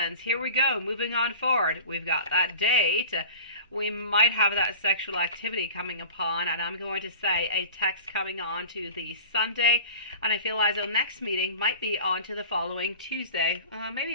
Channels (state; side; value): inverted; both; correlation -0.39